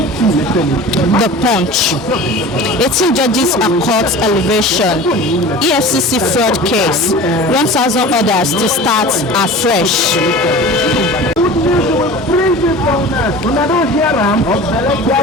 The Punch. 18 judges are court elevation. EFCC fraud case. 1,000 orders to start afresh.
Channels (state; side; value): normal; both; correlation 0.37